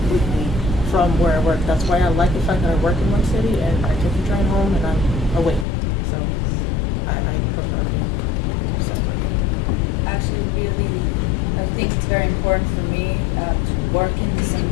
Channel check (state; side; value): drops out; right; at 5.7 s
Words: from where I work. That's why I like the fact that I work in one city and I take the train home and I'm away. So I prefer it. So. Actually, really, I think it's very important for me to work in the